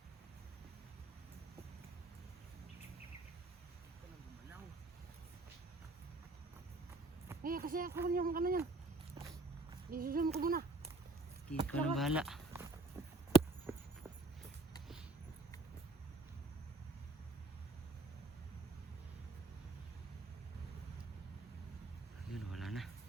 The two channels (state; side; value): quieter; left; 3.4 dB